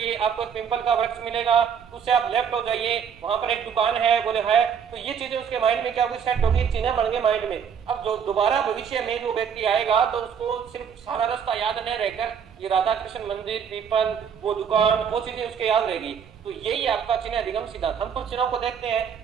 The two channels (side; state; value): left; quieter; 7.5 dB